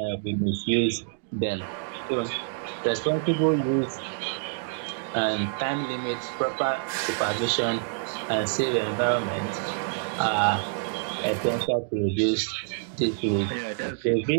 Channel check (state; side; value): silent; left; digital silence